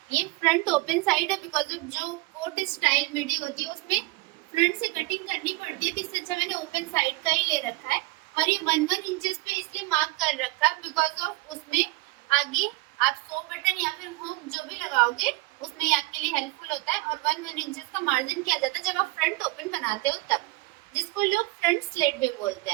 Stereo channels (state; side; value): quieter; left; 22.1 dB